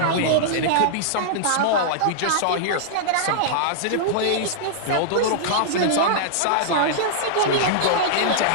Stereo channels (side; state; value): both; different; correlation -0.02